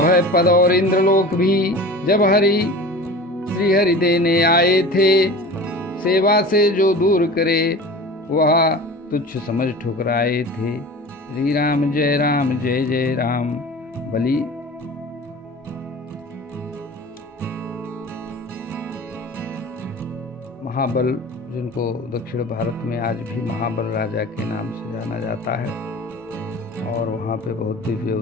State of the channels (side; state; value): both; normal; correlation 0.37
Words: पद और इंद्रलोक भी जब श्री हरि देने आए थे। सेवा से जो दूर करे वह तुच्छ समझ ठुकराए थे। श्री राम जय जय राम। बलि महाबल, जिनको दक्षिण भारत में आज भी महाबल राजा के नाम से जाना जाता है, और वहाँ पे बहुत दिव्य